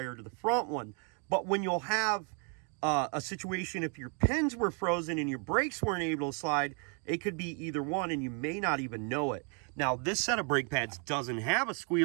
to the front one. But when you'll have a situation if your pins were frozen and your brakes weren't able to slide. It could be either one, and you may not even know it. Now, this set of brake pads doesn't have a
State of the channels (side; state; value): left; quieter; 38.3 dB